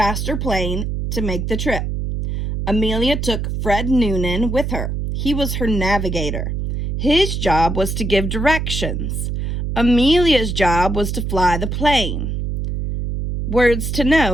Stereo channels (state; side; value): noise; right; hum, 2 dB below the sound